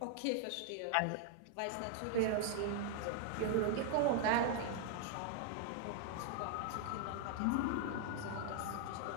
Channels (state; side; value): different; both; correlation -0.01